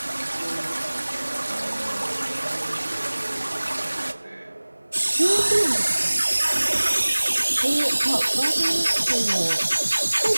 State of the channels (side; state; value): both; inverted; correlation -1.00